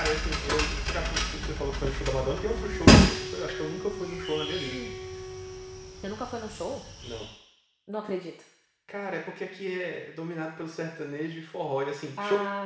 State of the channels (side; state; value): both; identical; correlation 1.00